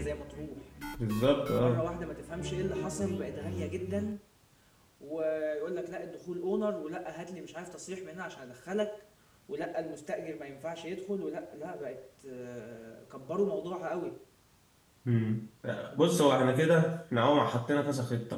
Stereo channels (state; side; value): identical; both; correlation 1.00